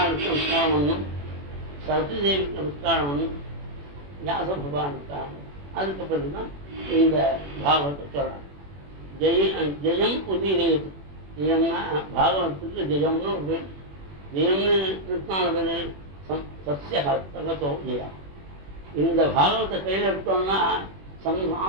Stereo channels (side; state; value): left; late; 21 ms